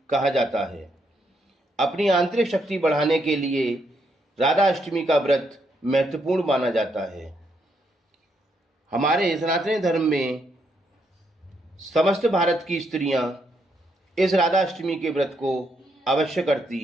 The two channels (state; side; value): normal; both; correlation 0.77